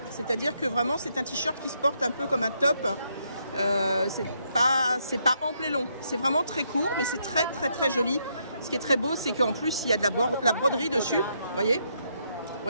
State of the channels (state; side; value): inverted; both; correlation -0.75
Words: C'est-à-dire que vraiment c'est un t-shirt qui se porte un peu comme un top. C'est pas ample et long, c'est vraiment très court, mais c'est très très très joli. Ce qui est très beau, c'est qu'en plus il y a de la broderie dessus, vous